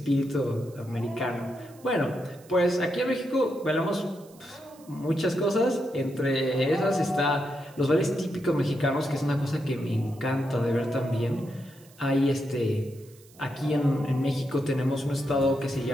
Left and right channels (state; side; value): noise; right; hiss, 26 dB below the sound